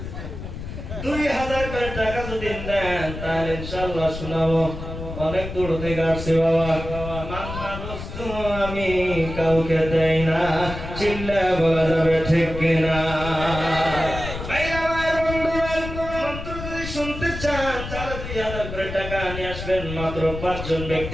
2000 করে টাকা যদি দেন তাহলে ইনশাআল্লাহ শোনাবো। অনেক দূর থেকে আসছে বাবা, মান্না দোস্ত আমি কাউকে দেই না, চিল্লায়ে বলা যাবে ঠিক কিনা? মাত্র 5 জন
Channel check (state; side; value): noise; left; rumble, 8 dB below the sound